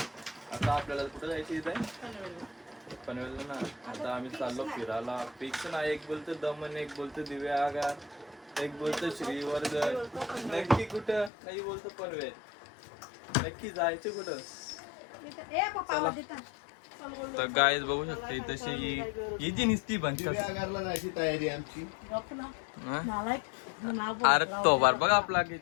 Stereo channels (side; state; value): right; drops out; at 11.3 s